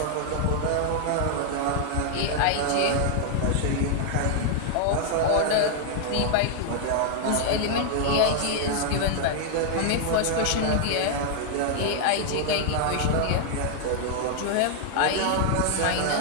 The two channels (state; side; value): different; both; correlation 0.00